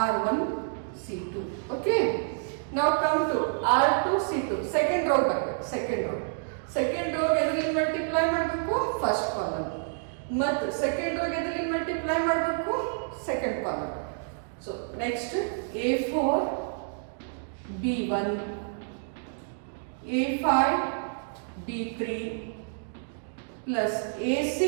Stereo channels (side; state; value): left; silent; digital silence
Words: R1 C2. Okay, now come to R2 C2 second row ಬರಬೇಕು. Second row ಎದರಲ್ಲಿ multiply ಮಾಡಬೇಕು? First column. ಮತ್ತು second row ಎದರಲ್ಲಿ multiply ಮಾಡಬೇಕು? Second column. So next A4 B1 A5 B3 plus